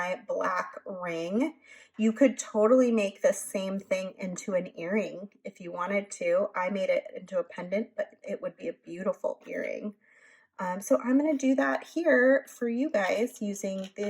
black ring. You could totally make this same thing into an earring if you wanted to. I made it into a pendant, but it would be a beautiful earring. So I'm going to do that here for you guys using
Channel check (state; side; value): identical; both; correlation 1.00